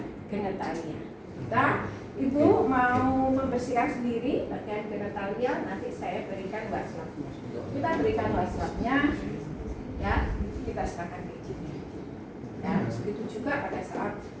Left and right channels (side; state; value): both; identical; correlation 1.00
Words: genitalia. Ibu mau membersihkan sendiri bagian genitalia, nanti saya berikan wastafnya. Kita berikan wastafnya, ya, kita serahkan ke ibunya. Ya, begitu juga pada saat